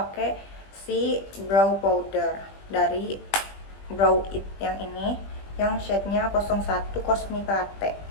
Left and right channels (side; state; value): right; late; 20 ms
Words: si brow powder dari Brow It yang ini, yang shade-nya 01 Cosmic Latte